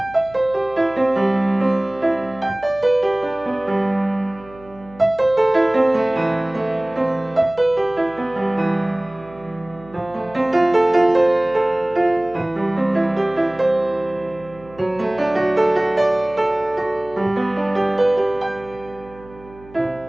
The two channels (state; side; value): noise; right; hum, 22 dB below the sound